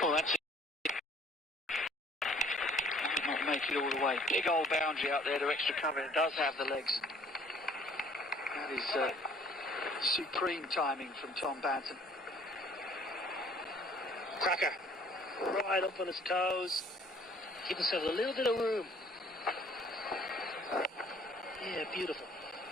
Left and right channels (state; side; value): normal; both; correlation 0.56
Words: Oh, that's it. Might not make it all the way. Big old boundary out there to extra cover. It does have the legs. That is supreme timing from Tom Banton. Cracker. Right up on his toes. Give himself a little bit of room. Yeah, beautiful.